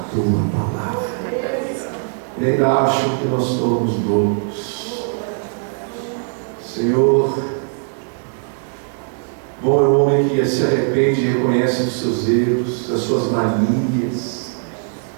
Tua palavra e ainda acham que nós somos loucos. Senhor, bom é o homem que se arrepende e reconhece os seus erros, as suas manias,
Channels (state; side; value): silent; left; digital silence